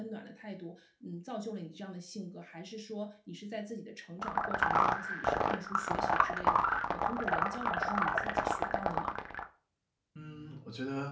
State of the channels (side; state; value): both; identical; correlation 1.00